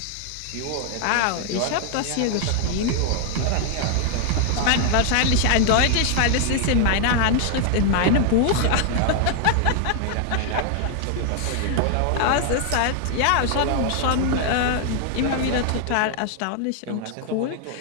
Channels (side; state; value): both; different; correlation 0.00